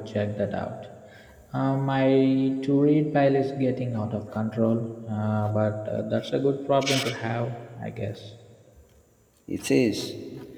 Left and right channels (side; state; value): both; identical; correlation 1.00